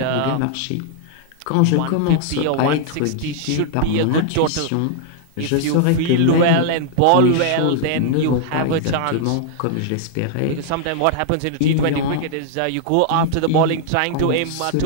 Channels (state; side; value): different; both; correlation -0.01